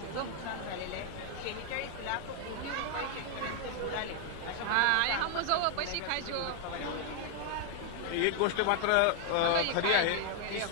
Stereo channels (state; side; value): different; both; correlation 0.00